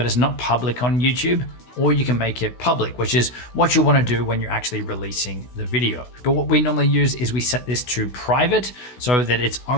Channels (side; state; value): right; late; 16 ms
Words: it's not public on YouTube. Or you can make it public, which is what you want to do when you're actually releasing the video. But what we normally use is we set this to private so that it's